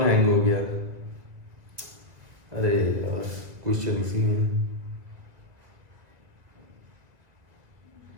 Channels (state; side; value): late; left; 2.2 ms